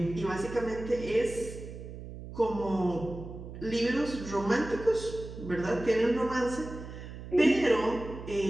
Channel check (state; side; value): noise; right; hum, 12 dB below the sound